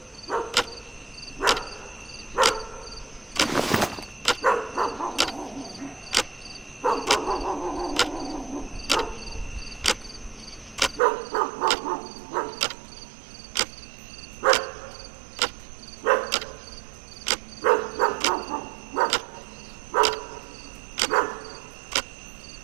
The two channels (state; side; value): drops out; left; at 11.0 s